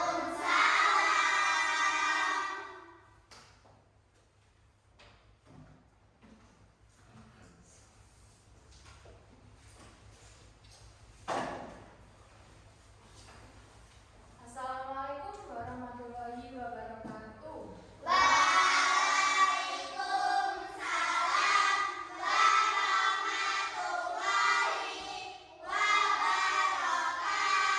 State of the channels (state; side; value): identical; both; correlation 1.00